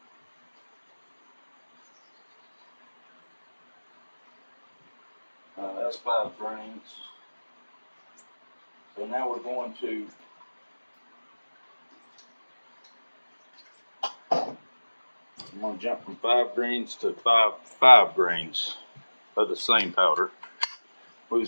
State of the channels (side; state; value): both; inverted; correlation -1.00